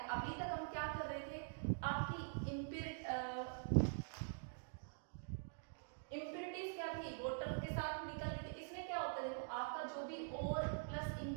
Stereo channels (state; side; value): silent; left; digital silence